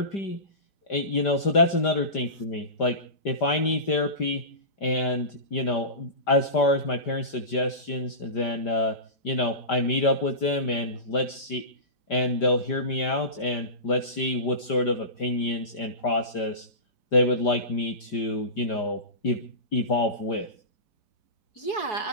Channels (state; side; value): late; right; 5.1 ms